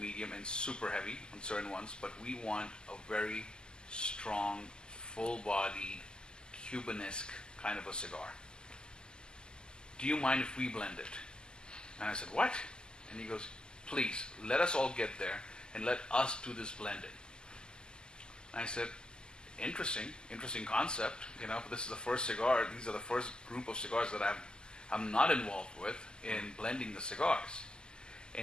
and super heavy on certain ones, but we want a very strong, full-bodied, Cubanesque kind of a cigar. Do you mind if we blend it? And I said, what? And he goes, please, let us all get there and let us do this blending. And I said, interesting concept. This is the first cigar. These are the first group of cigars that I'm not involved with in blending the cigars.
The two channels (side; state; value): right; late; 0.046 ms